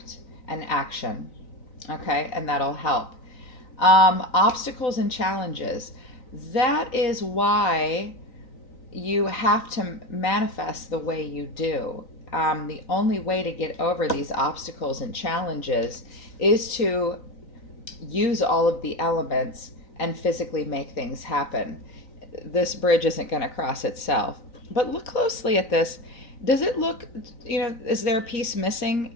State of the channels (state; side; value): late; right; 3.9 ms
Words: and action. Okay, and that'll help. Obstacles and challenges. That is why you have to manifest the way you do. The only way to get over these obstacles and challenges is to use all of the elements and physically make things happen. This bridge isn't going to cross itself. But look closely at this. Does it look, is there a piece missing